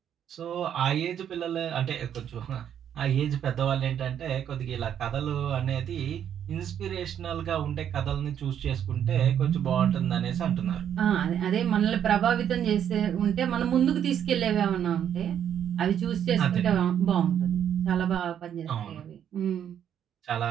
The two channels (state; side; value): quieter; left; 9.4 dB